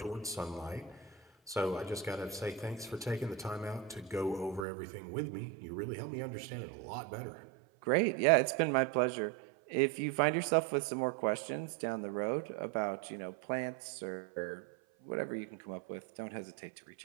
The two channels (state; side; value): drops out; left; at 4.7 s